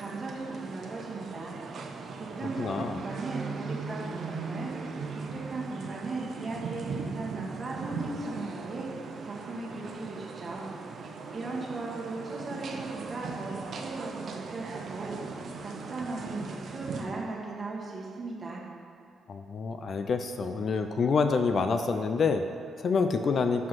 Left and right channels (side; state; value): both; normal; correlation 0.78